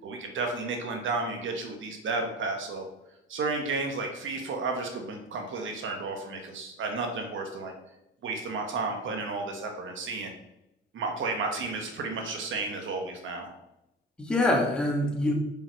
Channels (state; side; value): normal; both; correlation 0.26